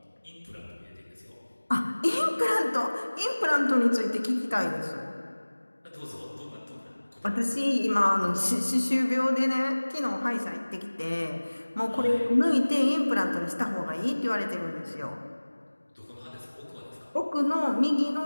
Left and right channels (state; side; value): inverted; both; correlation -1.00